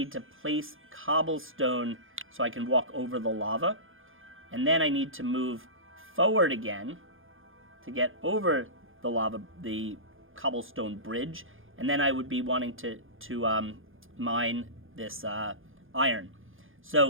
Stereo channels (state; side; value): late; left; 0.59 ms